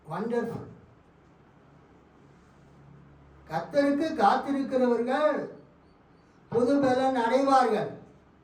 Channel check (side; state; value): both; identical; correlation 1.00